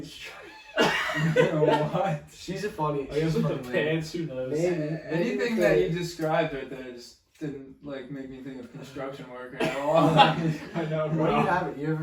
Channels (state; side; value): identical; both; correlation 1.00